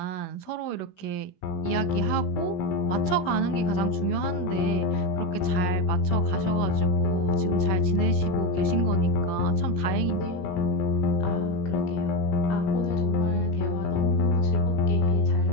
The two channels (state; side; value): late; right; 16 ms